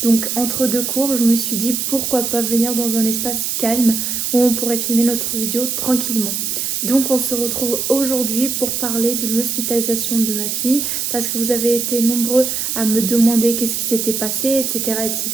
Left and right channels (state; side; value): noise; right; hiss, 1 dB below the sound